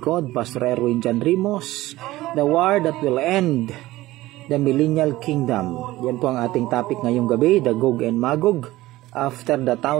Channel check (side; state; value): left; quieter; 17.3 dB